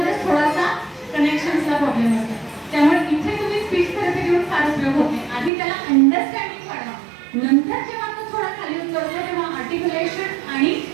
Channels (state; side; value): drops out; left; at 5.5 s